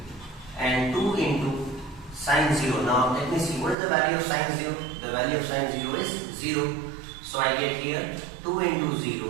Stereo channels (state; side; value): drops out; left; at 3.8 s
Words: and 2 into sin 0. Now let me see, what is the value of sin 0? The value of sin 0 is 0. So I get here 2 into